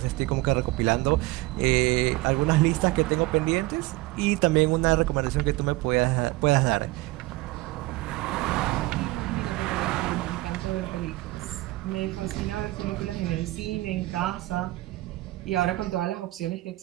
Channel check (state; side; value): quieter; left; 19.7 dB